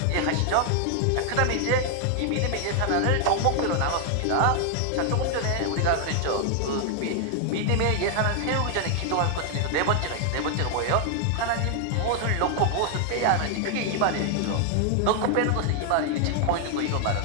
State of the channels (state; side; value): different; both; correlation 0.00